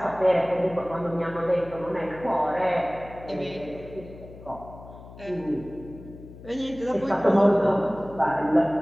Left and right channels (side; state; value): left; noise; hum, 17 dB below the sound